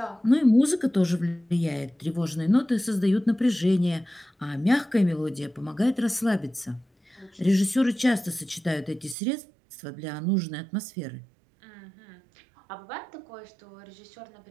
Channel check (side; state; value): left; drops out; at 9.2 s